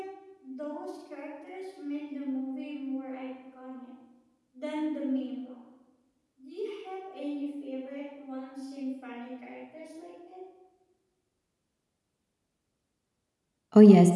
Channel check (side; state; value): both; identical; correlation 1.00